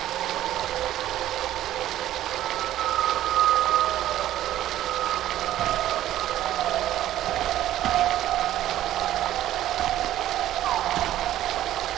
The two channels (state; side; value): quieter; left; 13.2 dB